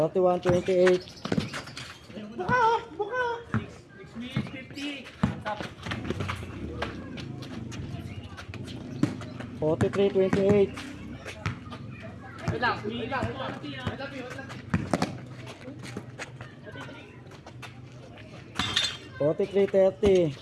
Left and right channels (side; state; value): both; identical; correlation 1.00